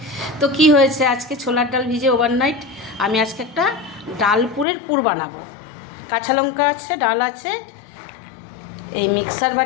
তো কি হয়েছে, আজকে ছোলার ডাল ভিজে ওভারনাইট আমি আজকে একটা ডালপুরের পুর বানাবো। কাঁচা লঙ্কা আছে, ডাল আছে, এই মিক্সার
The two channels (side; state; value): right; drops out; at 4.7 s